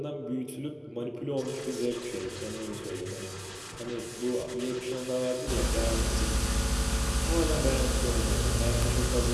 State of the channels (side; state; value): both; identical; correlation 1.00